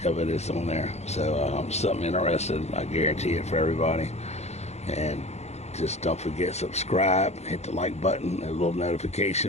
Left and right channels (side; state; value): right; late; 0.32 ms